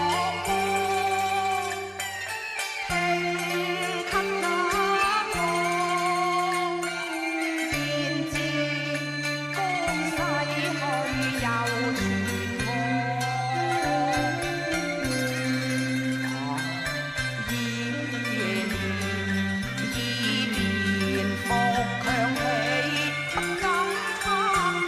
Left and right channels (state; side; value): identical; both; correlation 1.00